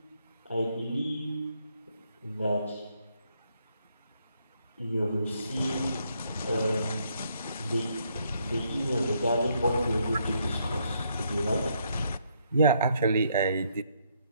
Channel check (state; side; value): inverted; both; correlation -0.73